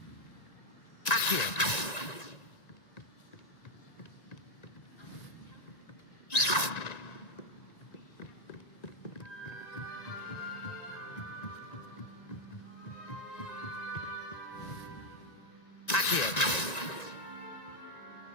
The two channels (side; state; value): right; late; 1.9 ms